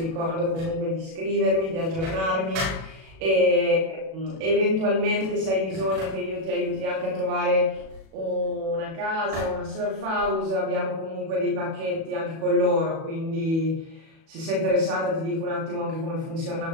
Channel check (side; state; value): left; late; 37 ms